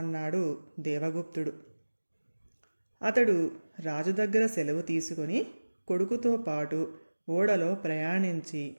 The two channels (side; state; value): both; inverted; correlation -1.00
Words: అన్నాడు దేవగుప్తుడు. అతడు రాజు దగ్గర సెలవు తీసుకొని కొడుకుతో పాటు ఓడలో ప్రయాణించి